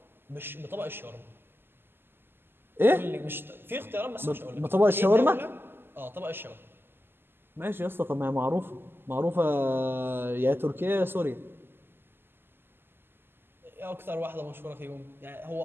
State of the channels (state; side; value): late; left; 0.10 ms